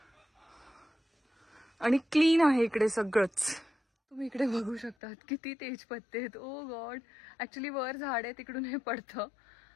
आणि क्लीन आहे इकडे सगळंच. तुम्ही इकडे बघू शकतात किती तेजपत्ते आहेत. ओ गॉड, ॲक्च्युली वर झाड आहे तिकडून हे पडतं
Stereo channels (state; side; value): drops out; right; at 5.0 s